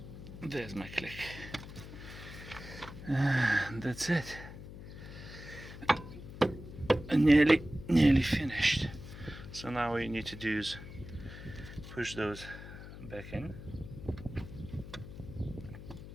There's my click. That's it. Nearly finished. So now what you need to do is push those back in.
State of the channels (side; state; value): left; noise; hum, 13 dB below the sound